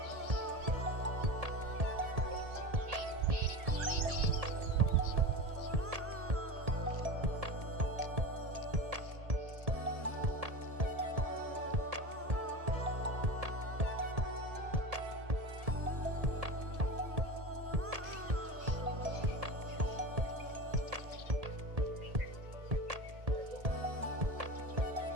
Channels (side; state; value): left; late; 1.8 ms